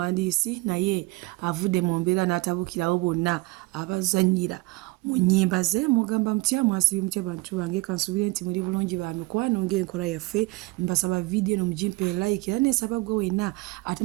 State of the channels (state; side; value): quieter; left; 23.1 dB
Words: naye avudde mu mbeera n'atabukirawo bonna abazannyira mu nnyimba ze mugamba mutya mwasibye mutya bantu bange kansubire nti muri bulungi ba mikwano ng'enkola yaffe mbasaba video no mujimpe like era nesaba gwe wenna